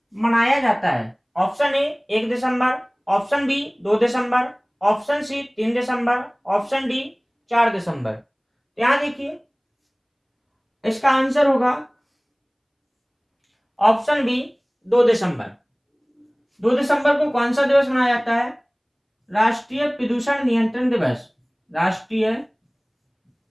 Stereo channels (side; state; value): both; identical; correlation 1.00